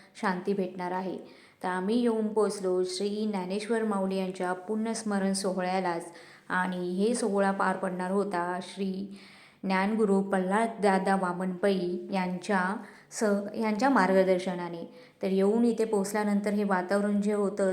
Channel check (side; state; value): both; identical; correlation 1.00